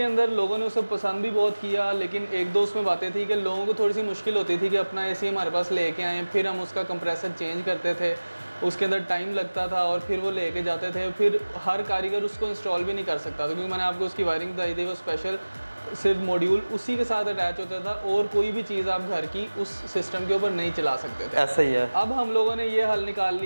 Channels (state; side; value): inverted; both; correlation -1.00